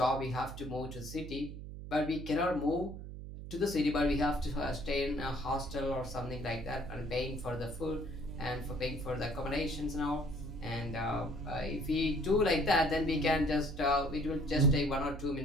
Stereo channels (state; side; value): noise; right; hum, 10 dB below the sound